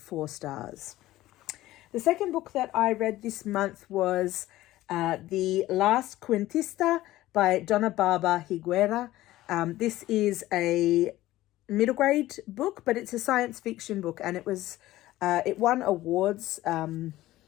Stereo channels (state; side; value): quieter; right; 16.1 dB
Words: 4 stars. The second book that I read this month was the Last Quintista by Donna, Barba, Higuera. This is a middle grade book, but it's a science fiction book, and it won awards.